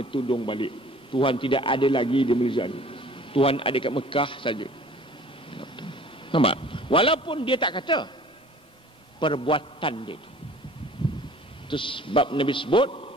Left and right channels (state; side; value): normal; both; correlation 0.49